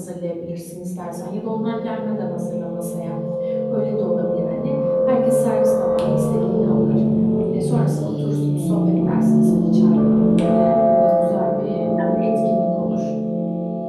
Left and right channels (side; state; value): both; identical; correlation 1.00